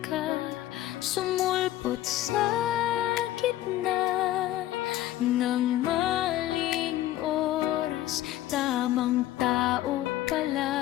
ka, sumulpot sa gitna ng maling oras. Tamang tao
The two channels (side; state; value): right; quieter; 14.3 dB